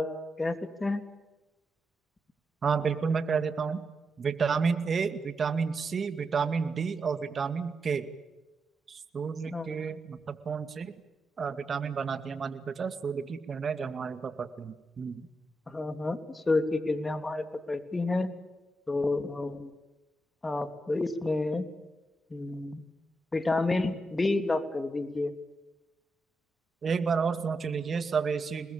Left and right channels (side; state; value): both; normal; correlation 0.86